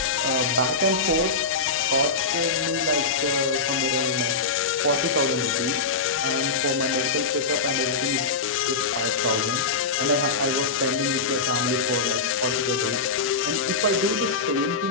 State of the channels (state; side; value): quieter; right; 4.3 dB